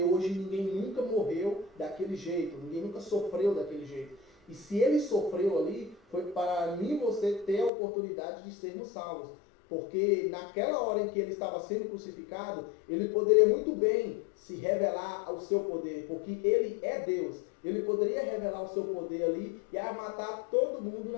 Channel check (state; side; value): drops out; right; at 7.7 s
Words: hoje ninguém nunca morreu daquele jeito, ninguém nunca sofreu daquele jeito. E se Ele sofreu ali, foi para mim e você ter a oportunidade de sermos salvos. Porque naquela hora em que Ele estava sendo crucificado, Ele poderia muito bem se revelar ao seu poder, porque Ele é Deus. Ele poderia revelar o seu poder ali e matar todo mundo